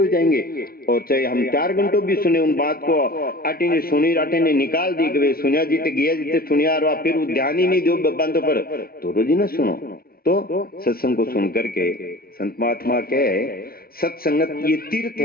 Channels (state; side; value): late; right; 0.44 ms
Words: जाएंगे। और चाहे हम 4 घंटों भी सुने उन बात को, आटे ने सुनी राटे ने निकाल दी कि सुनिया जीते गया जीते सुनिया, और फिर वो ध्यान ही नहीं दो बंदों पर, तो रोज ही ना सुनो। तो सत्संग को सुन करके संत महात्मा कहे सत्संगत ये तीर्थ